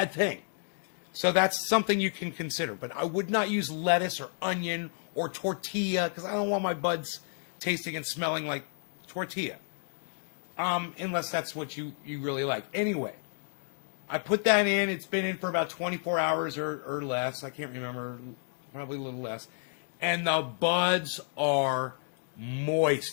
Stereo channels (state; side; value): silent; right; 57 dB below the other